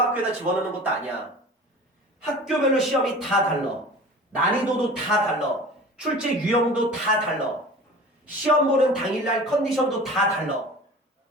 집어넣는 것도 아니야. 학교별로 시험이 다 달라. 난이도도 다 달라. 출제 유형도 다 달라. 시험 보는 당일날 컨디션도 다 달라.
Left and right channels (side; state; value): both; normal; correlation 0.39